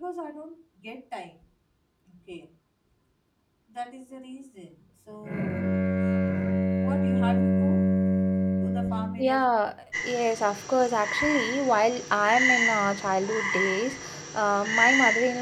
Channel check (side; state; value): both; identical; correlation 1.00